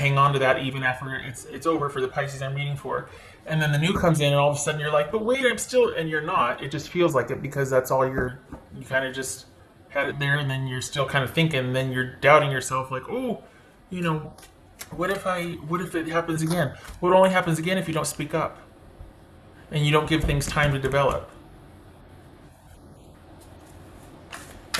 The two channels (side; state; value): both; identical; correlation 1.00